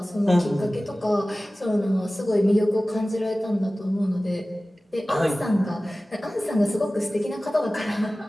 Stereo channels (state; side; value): normal; both; correlation 0.97